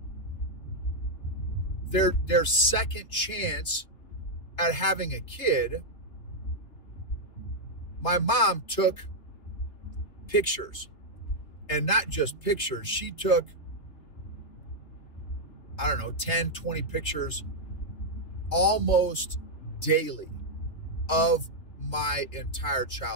their second chance at having a kid. My mom took pictures, and not just pictures. She took, 10, 20 pictures almost daily of my entire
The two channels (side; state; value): right; late; 3.5 ms